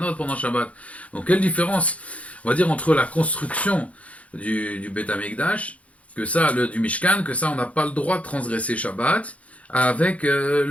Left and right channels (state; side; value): late; right; 0.065 ms